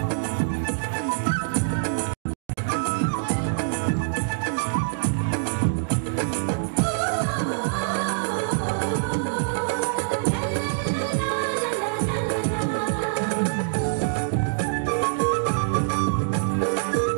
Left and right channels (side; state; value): left; silent; digital silence